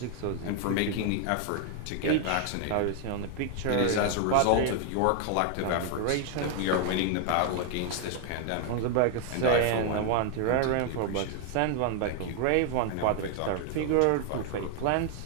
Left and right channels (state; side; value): different; both; correlation 0.00